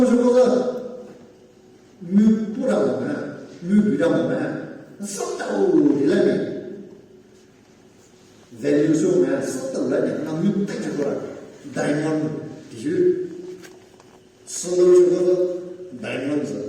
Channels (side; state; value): both; identical; correlation 1.00